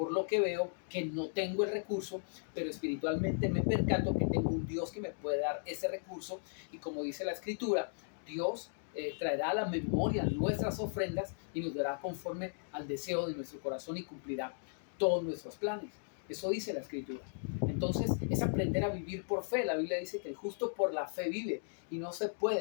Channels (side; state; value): right; silent; digital silence